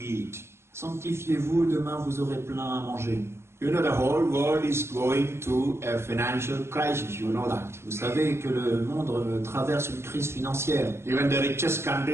Sanctifiez-vous, demain vous aurez plein à manger. You know, the whole world is going through a financial crisis, you know that. Vous savez que le monde traverse une crise financière. Even the richest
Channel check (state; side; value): late; left; 0.12 ms